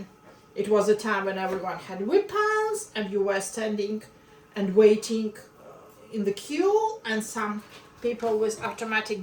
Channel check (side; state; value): both; identical; correlation 1.00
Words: it was a time when everyone had weapons, and you were standing and waiting in the queue, and some people with automatic